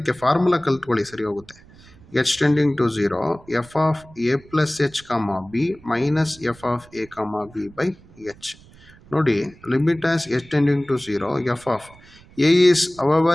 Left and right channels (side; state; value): right; noise; rumble, 24 dB below the sound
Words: formula ಕಲ್ತ್ಕೊಳ್ಳಿ, ಸರಿ ಹೋಗುತ್ತೆ. H tending to 0, f of a plus h comma b minus f of a comma b by h. ನೋಡಿ, limit as h tending to 0, f of a is